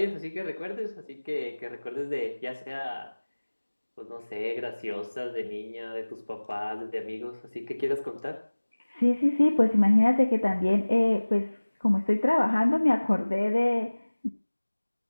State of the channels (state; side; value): inverted; both; correlation -1.00